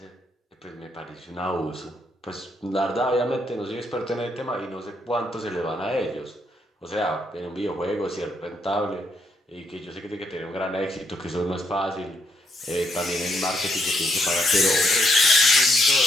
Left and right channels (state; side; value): normal; both; correlation 0.75